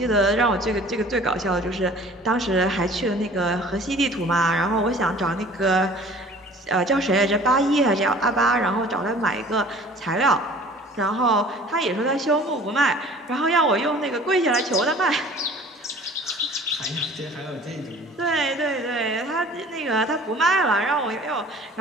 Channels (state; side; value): normal; both; correlation 0.48